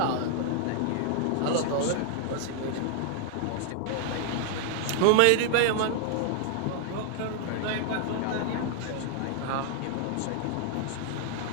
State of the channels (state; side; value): different; both; correlation 0.00